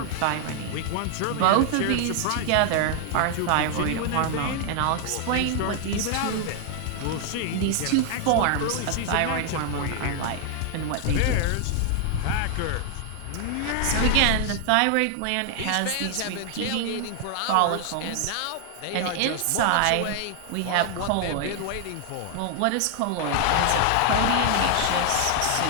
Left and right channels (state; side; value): different; both; correlation 0.00